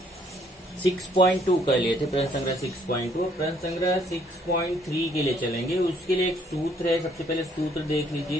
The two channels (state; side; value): normal; both; correlation 0.65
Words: 6.2 कर लिए थे। प्रश्न संग्रह 6.2, प्रश्न संग्रह 6.3 के लिए चलेंगे। उसके लिए एक सूत्र है। सबसे पहले सूत्र देख